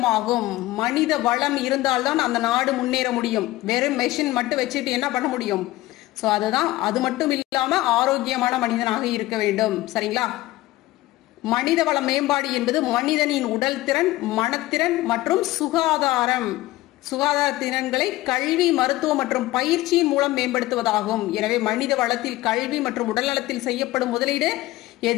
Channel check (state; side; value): quieter; right; 17.4 dB